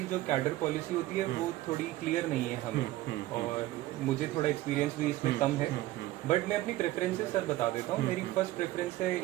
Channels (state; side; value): quieter; left; 16.5 dB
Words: जो कैडर पॉलिसी होती है वो थोड़ी क्लियर नहीं है हमें, और मुझे थोड़ा एक्सपीरियंस भी इसमें कम है। बट मैं अपनी प्रेफरेंसेस सर बता देता हूँ। मेरी फर्स्ट प्रेफरेंस है